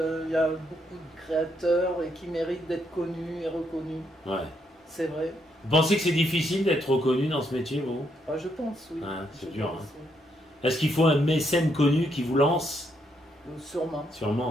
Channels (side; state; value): both; normal; correlation 0.76